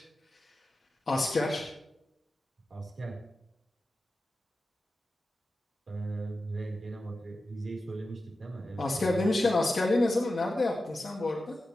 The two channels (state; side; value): normal; both; correlation 0.92